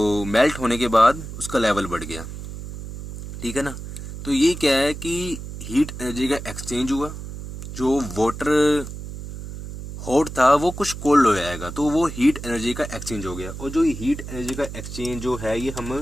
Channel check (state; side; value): noise; right; hum, 10 dB below the sound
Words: मेल्ट होने के बाद उसका लेवल बढ़ गया। ठीक है ना, तो ये क्या है कि हीट एनर्जी का एक्सचेंज हुआ, जो वाटर हॉट था वो कुछ कोल्ड हो जाएगा, तो वो हीट एनर्जी का एक्सचेंज हो गया। और जो ये हीट एनर्जी का एक्सचेंज जो है ये